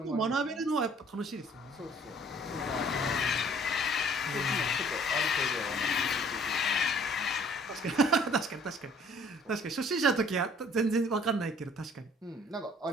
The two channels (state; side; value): normal; both; correlation 0.56